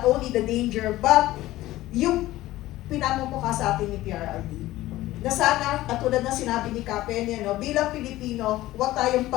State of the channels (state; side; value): quieter; right; 16.4 dB